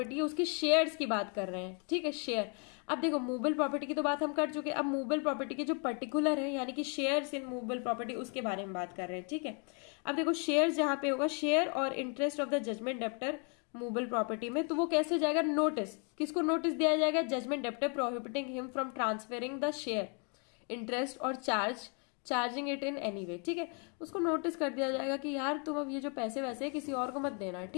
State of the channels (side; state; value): right; quieter; 37.6 dB